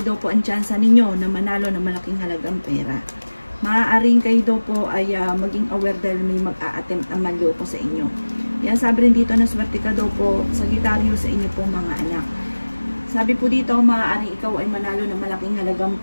daw po ang tsansa ninyo na manalo ng malaking halagang pera. Maaaring kayo daw po ay maging aware dahil may mag-a-attempt ang manloko sa inyo. Yan, sabi rin dito na swerte ka daw po Sagittarius sa inyo pong mga anak. Sabi po dito, maaaring ikaw ay manalo ng malaking halagang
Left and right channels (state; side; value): inverted; both; correlation -1.00